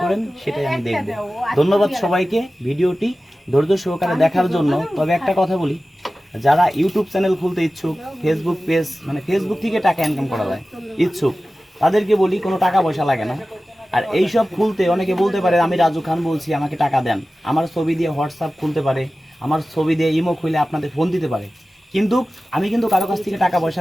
করেন সেটাই আমি দেখব। ধন্যবাদ সবাইকে ভিডিওটি ধৈর্য সহকারে দেখার জন্য। তবে একটা কথা বলি, যারা ইউটিউব চ্যানেল খুলতে ইচ্ছুক, ফেসবুক পেজ মানে ফেসবুক থেকে টাকা ইনকাম করা যায় ইচ্ছুক, তাদেরকে বলি কোনো টাকা পয়সা লাগে না। আর এইসব খুলতে অনেকে বলতে পারে আমি রাজু খান বলছি, আমাকে টাকা দেন। আমার ছবি দিয়ে হোয়াটসঅ্যাপ খুলতে পারে, আমার ছবি দিয়ে ইমো খুলে আপনাদের ফোন দিতে পারে, কিন্তু আমি কিন্তু কারো কাছ থেকে টাকা পয়সা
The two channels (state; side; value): normal; both; correlation 0.96